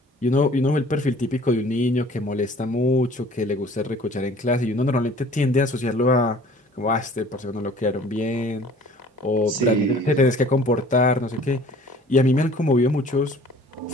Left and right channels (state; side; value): normal; both; correlation 0.50